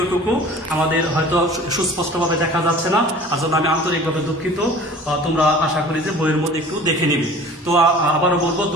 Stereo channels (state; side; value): normal; both; correlation 0.45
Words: আমাদের হয়তো সুস্পষ্টভাবে দেখা যাচ্ছে না, আর জন্য আমি আন্তরিকভাবে দুঃখিত। তোমরা আশা করি যে বইয়ের মধ্যে একটু দেখে নিবে। তো আবারও বলবো,